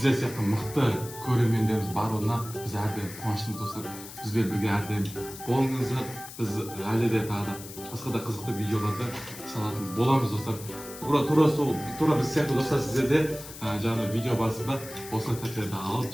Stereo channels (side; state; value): left; noise; hiss, 14 dB below the sound